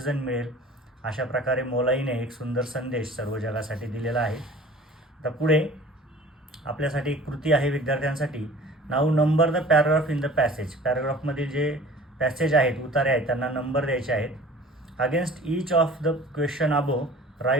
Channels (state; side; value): normal; both; correlation 0.45